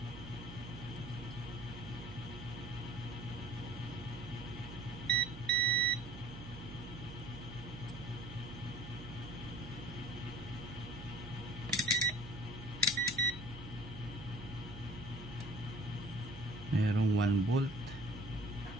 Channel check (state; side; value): noise; right; hum, 13 dB below the sound